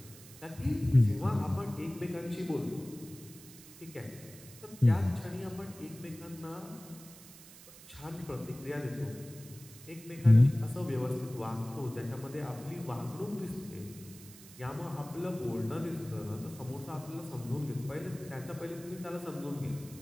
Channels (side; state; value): right; noise; hiss, 18 dB below the sound